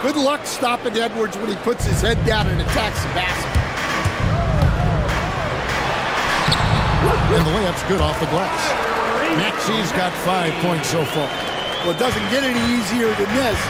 good luck stopping Edwards when he puts his head down and attacks the basket. And the layup's good off the glass. Maxey's got 5 points so far. Well, it doesn't get any easier than this.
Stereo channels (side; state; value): both; identical; correlation 1.00